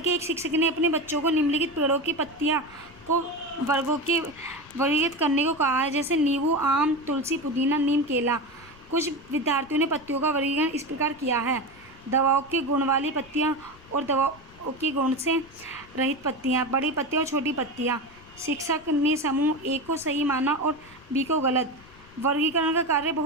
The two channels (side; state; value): left; noise; rumble, 24 dB below the sound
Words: के एक शिक्षक ने अपने बच्चों को निम्नलिखित पेड़ों की पत्तियां को वर्गीकृत करने को कहा है, जैसे नींबू, आम, तुलसी, पुदीना, नीम, केला। कुछ विद्यार्थियों ने पत्तियों का वर्गीकरण इस प्रकार किया है: दवाओं के गुण वाली पत्तियां और दवाओं के गुण से रहित पत्तियां, बड़ी पत्तियां और छोटी पत्तियां। शिक्षक ने समूह ए को सही माना और बी को गलत। वर्गीकरण का कार्य